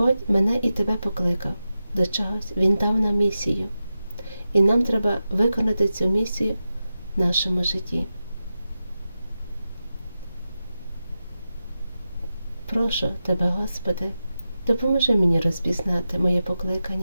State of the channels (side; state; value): both; inverted; correlation -0.92